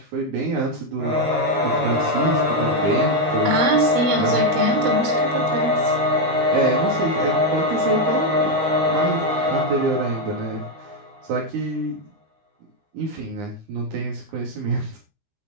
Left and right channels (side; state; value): left; late; 13 ms